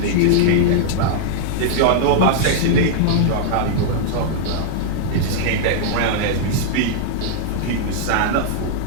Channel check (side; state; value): both; different; correlation -0.01